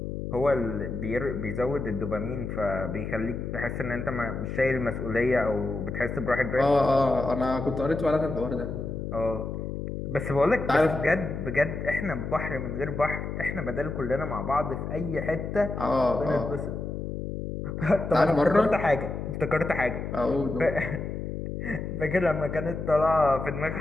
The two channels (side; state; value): left; noise; hum, 5 dB below the sound